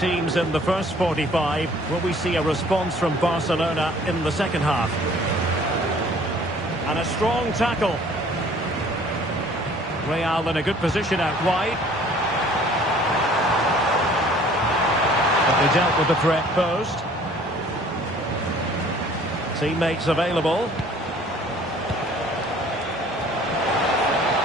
in the first 45. Will we see a response from Barcelona in the second half? And a strong tackle. Real in a good position out wide. But they dealt with the threat posed. Teammates available.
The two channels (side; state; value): both; normal; correlation 0.54